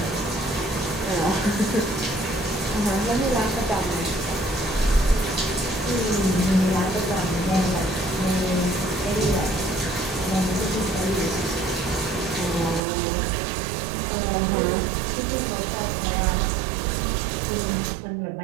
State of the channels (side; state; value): left; drops out; at 12.8 s